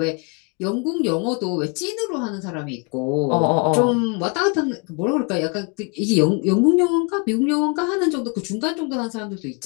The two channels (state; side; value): quieter; right; 33.7 dB